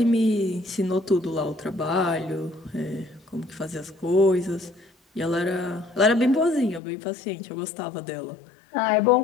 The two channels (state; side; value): drops out; right; at 6.8 s